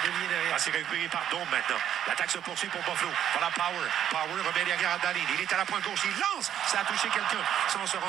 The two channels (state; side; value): quieter; left; 10.2 dB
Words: C'est récupéré par Dawn maintenant. L'attaque se poursuit pour Buffalo. Voilà Power. Power remet derrière à Dahlin. Il est à la pointe gauche. Il lance. Ça a touché quelqu'un sans se